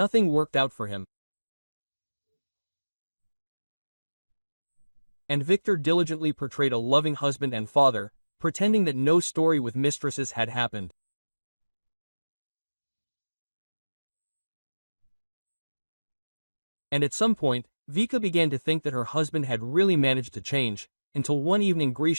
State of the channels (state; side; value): inverted; both; correlation -1.00